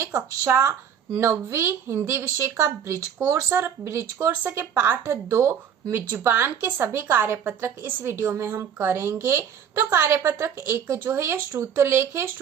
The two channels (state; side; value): quieter; left; 8.2 dB